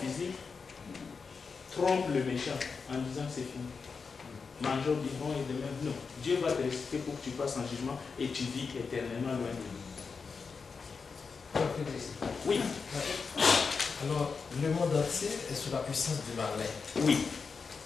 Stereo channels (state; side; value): quieter; right; 5.1 dB